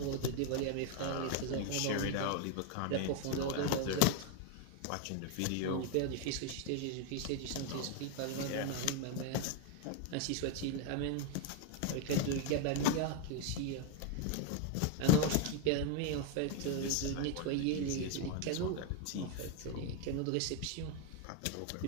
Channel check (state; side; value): different; both; correlation 0.01